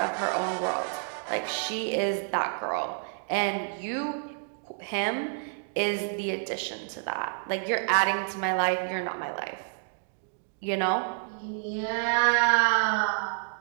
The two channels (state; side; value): silent; left; 59 dB below the other